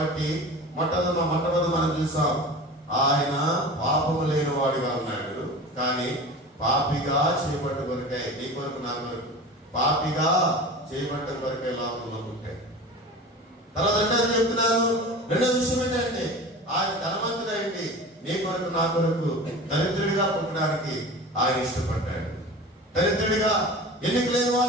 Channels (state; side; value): normal; both; correlation 0.35